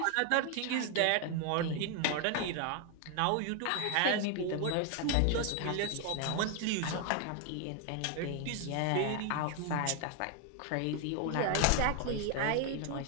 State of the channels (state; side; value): different; both; correlation 0.01